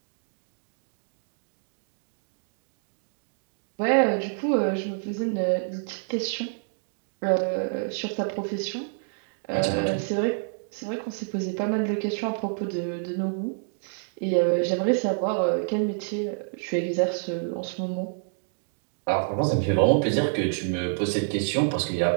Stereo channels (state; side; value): silent; left; digital silence